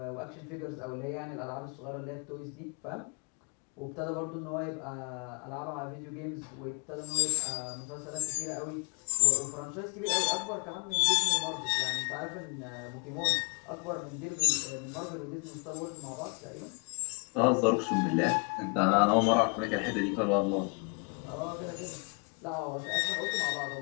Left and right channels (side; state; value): right; quieter; 36.1 dB